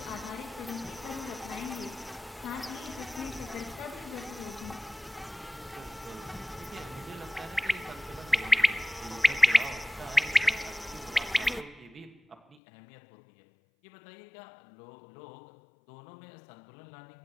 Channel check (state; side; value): drops out; right; at 12.6 s